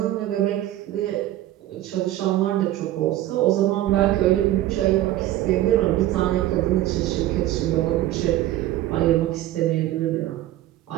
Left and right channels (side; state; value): left; quieter; 14.2 dB